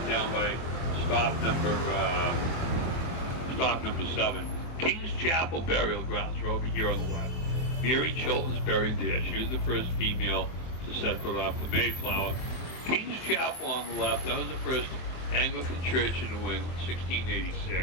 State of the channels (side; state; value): right; late; 23 ms